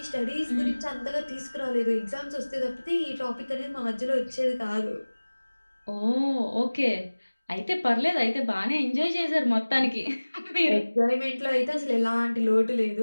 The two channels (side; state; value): both; inverted; correlation -1.00